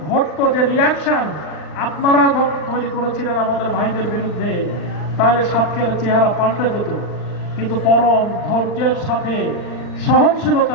ঘটতো, যে রিয়াকশন আপনারা তৈরি করেছিলেন আমাদের ভাইদের বিরুদ্ধে, তাহলে সাতক্ষীরার চেহারা পাল্টে যেত। কিন্তু পরম ধৈর্যের সাথে,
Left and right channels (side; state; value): right; late; 39 ms